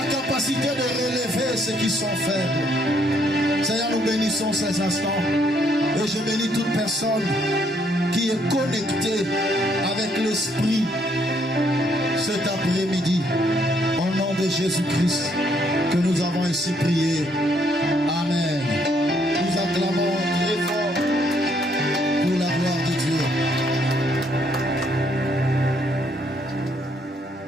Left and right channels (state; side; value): normal; both; correlation 0.70